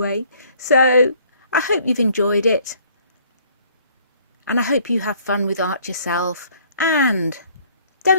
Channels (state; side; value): inverted; both; correlation -0.59